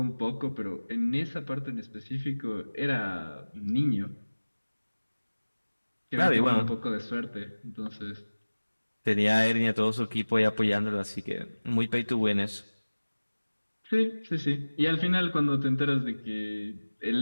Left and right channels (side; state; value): both; inverted; correlation -1.00